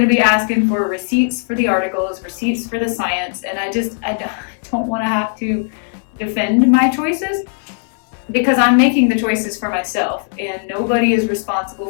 to be asking for receipts for the articles, receipts for the science, and I don't want to have to defend my choices because I'm making the choices for myself, and nobody is responsible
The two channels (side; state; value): right; silent; 65 dB below the other